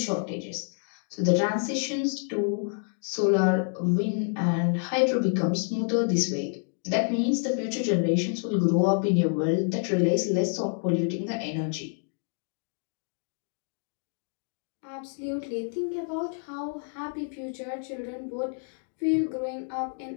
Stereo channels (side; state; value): right; silent; 56 dB below the other